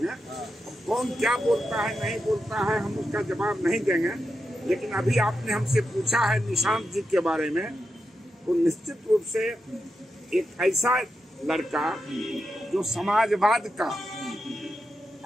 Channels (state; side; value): normal; both; correlation 0.87